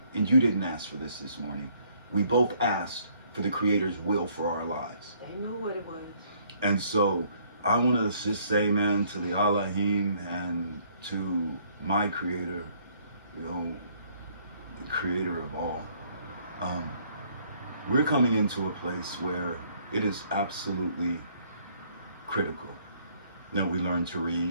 and you didn't ask for this morning. We both asked for the Creator's will for our lives. They knew what it was. And so I want to just say, man, to the Elohim and to my Creator, you know, the Creator of all, we're coming into a place where it is absolutely critical that we learn to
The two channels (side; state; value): both; inverted; correlation -0.64